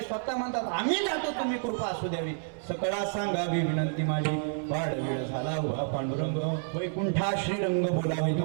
स्वतः म्हणतात आम्ही जातो तुम्ही कृपा असू द्यावी सकळा सांगावी विनंती माझी वाढ वेळ झाला उभा पांडुरंग वैकुंठा श्रीरंग बोलावे.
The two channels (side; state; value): left; silent; 58 dB below the other